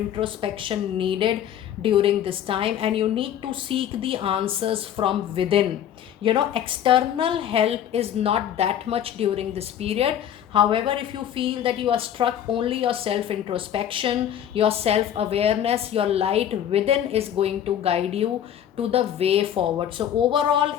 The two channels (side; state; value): right; quieter; 10.1 dB